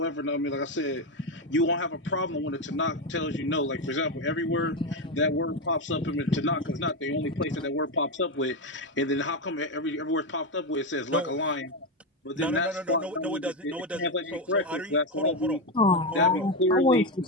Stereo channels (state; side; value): normal; both; correlation 0.10